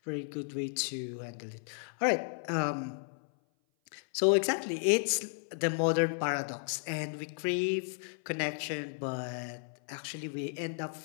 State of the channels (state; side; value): silent; right; 55 dB below the other